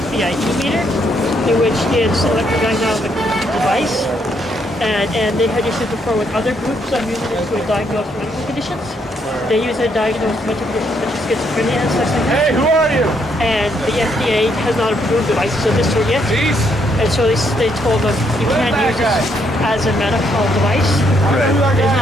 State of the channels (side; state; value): both; normal; correlation 0.73